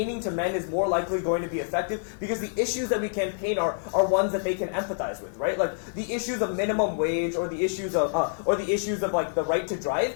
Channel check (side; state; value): right; silent; 60 dB below the other